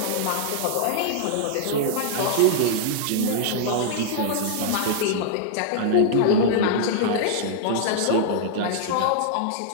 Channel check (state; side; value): different; both; correlation -0.01